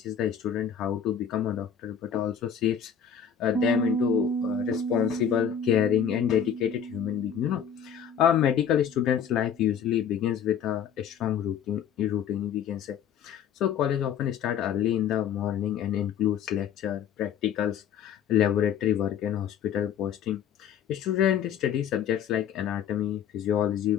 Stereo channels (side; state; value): right; quieter; 8.2 dB